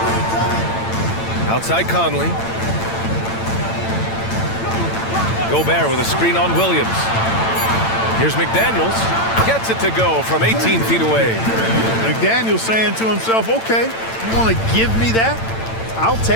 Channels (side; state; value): right; late; 8.9 ms